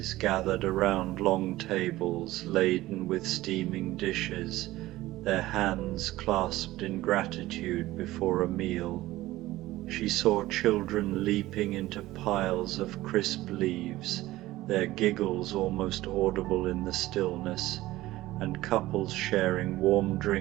gathered around long tables laden with steaming dishes, their hands clasped in gratitude before a meal. She saw children leaping into piles of crisp leaves, their giggles almost audible in the stillness, and couples sharing warm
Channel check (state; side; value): quieter; left; 17.0 dB